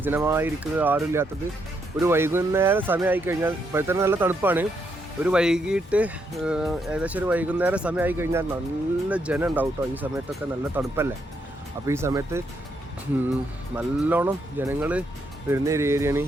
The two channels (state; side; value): normal; both; correlation 0.77